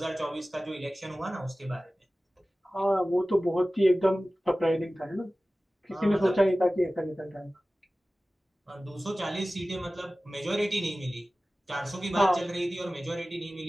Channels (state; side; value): normal; both; correlation 0.97